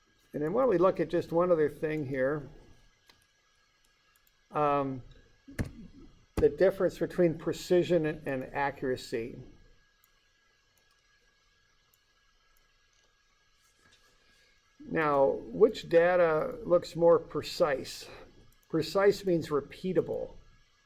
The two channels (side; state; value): both; identical; correlation 1.00